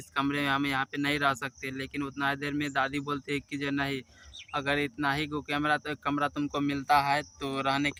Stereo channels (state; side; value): identical; both; correlation 1.00